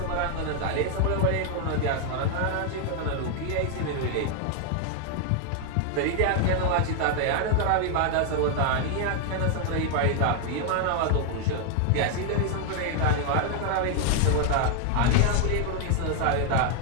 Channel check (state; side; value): different; both; correlation 0.00